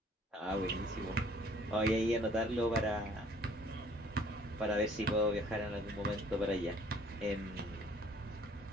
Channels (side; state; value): both; normal; correlation 0.57